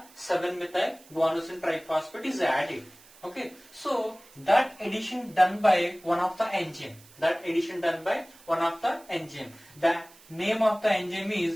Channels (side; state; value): right; noise; hiss, 24 dB below the sound